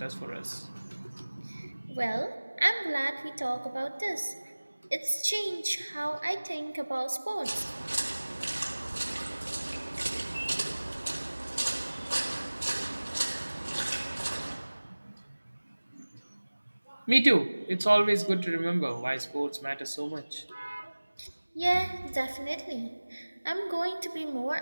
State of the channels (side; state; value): both; inverted; correlation -1.00